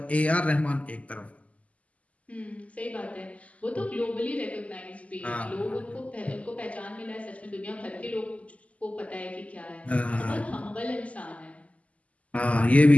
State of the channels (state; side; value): late; right; 0.069 ms